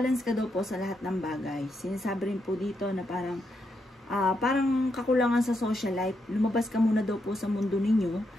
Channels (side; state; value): both; normal; correlation 0.81